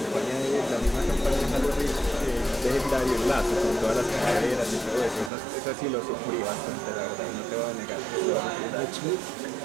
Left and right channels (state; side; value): drops out; left; at 5.3 s